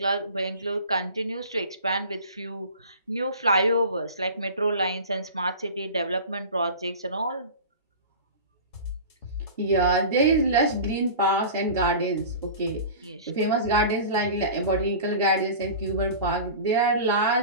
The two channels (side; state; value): both; inverted; correlation -0.36